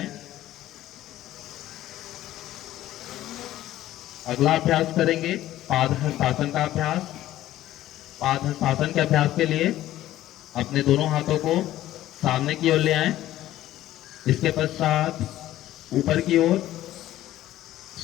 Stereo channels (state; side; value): quieter; right; 14.1 dB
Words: अगला अभ्यास करेंगे पादहस्तासन का अभ्यास। पादहस्तासन के अभ्यास के लिए अपने दोनों हाथों को सामने की ओर ले आएं। इसके पश्चात ऊपर की ओर